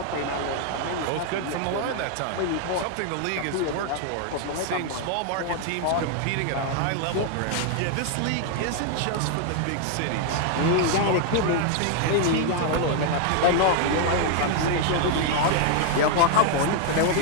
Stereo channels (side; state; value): both; different; correlation 0.00